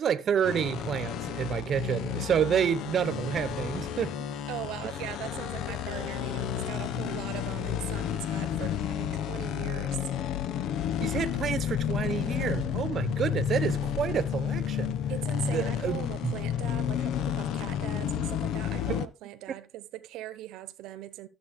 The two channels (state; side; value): normal; both; correlation 0.52